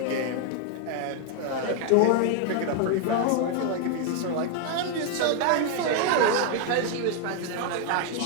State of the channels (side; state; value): both; different; correlation 0.01